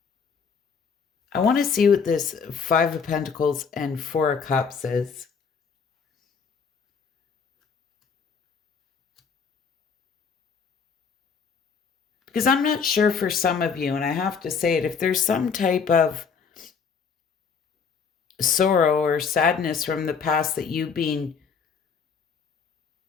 I want to see what this Five of Pentacles and Four of Cups is. Because I'm not sure for some of you, and I have to say it, if there's some type of sorrow or sadness from the past that you've been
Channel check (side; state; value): right; quieter; 5.9 dB